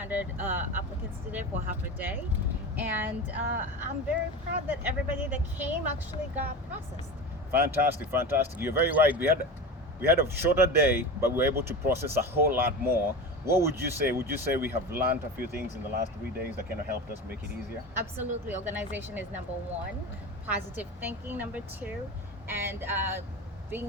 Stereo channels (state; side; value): normal; both; correlation 0.27